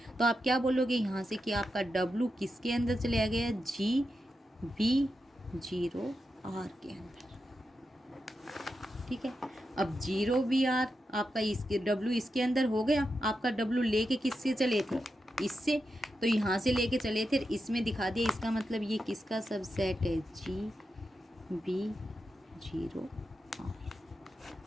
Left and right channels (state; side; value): normal; both; correlation 0.88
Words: तो आप क्या बोलोगे यहाँ से कि आपका डब्लू किसके अंदर चले गया, जी बी जीरो आर के अंदर, ठीक है। अब 0 BR आपका इसके W इसके अंदर हो गया, आपका W लेके किससे चले थे, इससे, तो यहाँ से लेके चले थे, इसमें दिखा दिया, इसका मतलब ये किसका सबसेट है, GB0R।